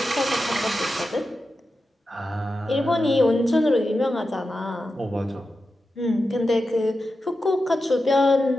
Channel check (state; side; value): normal; both; correlation 0.91